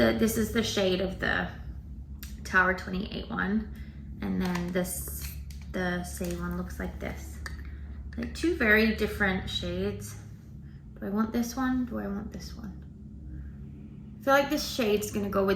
is the shade of the Tower 28 one, and then the Saie one looks like this. Like two very different shades. Do I want this one? Do I want this one? I feel like this shade's gonna go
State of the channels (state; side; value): identical; both; correlation 1.00